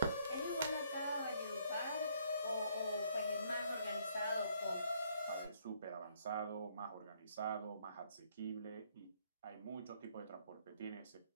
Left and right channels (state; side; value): inverted; both; correlation -0.67